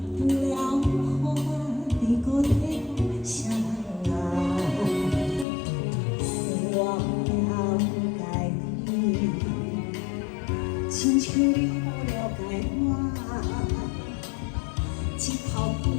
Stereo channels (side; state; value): right; drops out; at 5.5 s